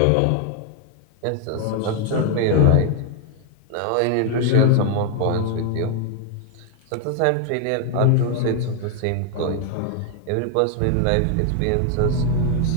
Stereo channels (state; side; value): different; both; correlation 0.00